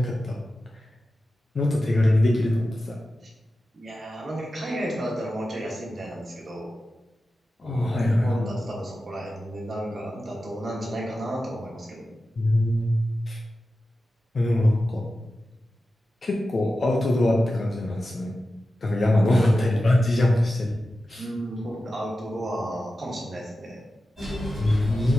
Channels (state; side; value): normal; both; correlation 0.93